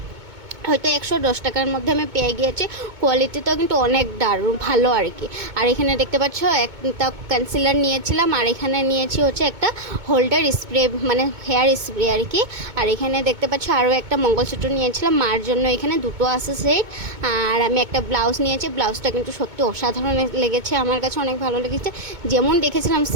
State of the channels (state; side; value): late; left; 2.2 ms